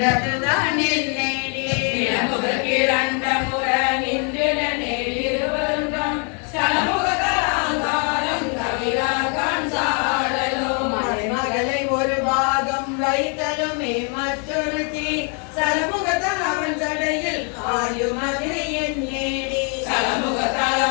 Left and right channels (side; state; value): right; quieter; 38.0 dB